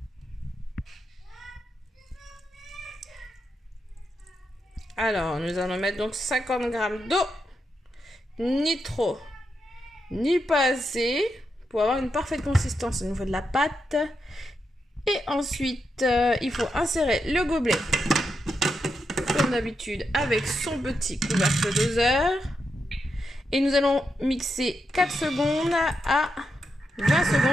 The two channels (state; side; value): normal; both; correlation 0.85